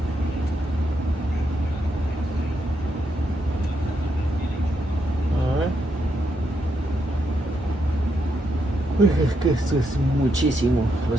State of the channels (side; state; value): both; normal; correlation 0.80